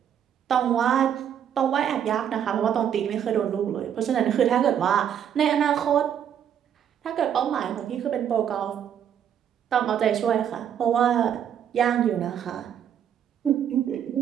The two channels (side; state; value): left; quieter; 9.2 dB